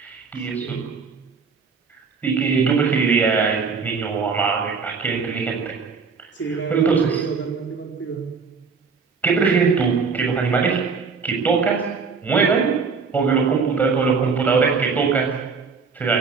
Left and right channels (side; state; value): left; quieter; 5.2 dB